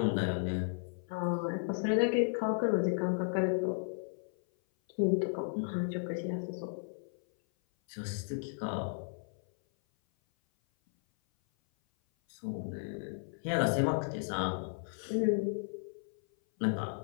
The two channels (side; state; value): right; silent; 55 dB below the other